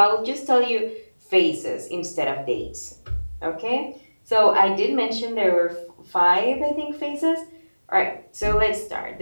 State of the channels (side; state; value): both; inverted; correlation -1.00